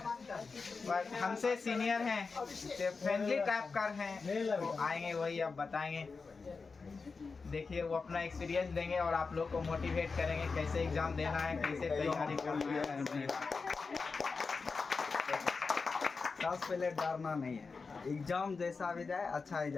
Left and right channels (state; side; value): quieter; right; 4.6 dB